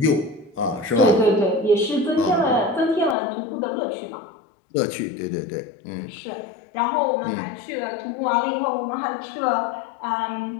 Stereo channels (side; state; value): right; drops out; at 3.2 s